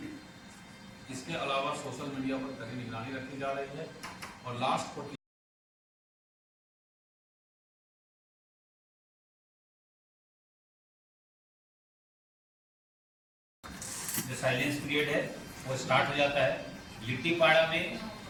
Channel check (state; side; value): identical; both; correlation 1.00